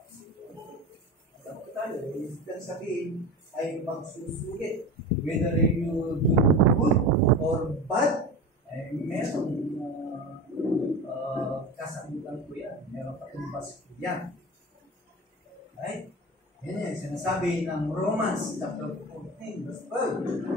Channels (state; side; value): normal; both; correlation 0.29